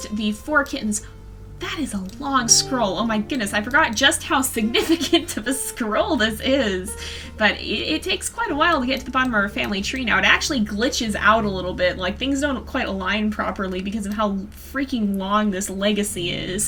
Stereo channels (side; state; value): both; identical; correlation 1.00